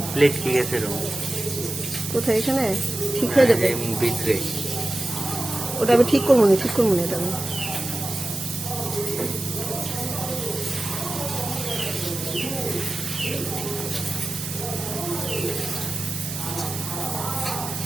প্লেট ঠিক আছে রং কোথায় এখানে ঠিক হয়ে যাবে। ভিতরে ওটা আমি ঠিক করবো না, ঠিক করবো না এটা আমি।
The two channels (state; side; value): noise; right; hiss, 7 dB below the sound